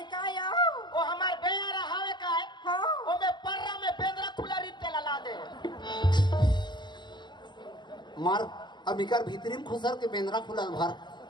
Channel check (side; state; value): right; late; 0.21 ms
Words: का या वो हमार बेयारा हावे का है हाँ वो में पर्रा में बेंद्रा खुला रीत के ला दे मार अबिकर भीतरी में खुसर के बेंद्रा खुलल भर